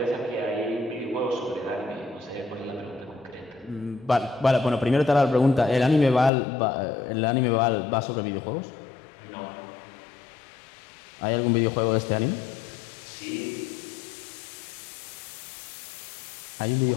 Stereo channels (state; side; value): drops out; right; at 6.3 s